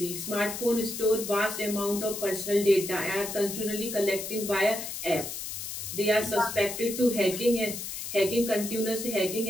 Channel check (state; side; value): noise; left; hiss, 7 dB below the sound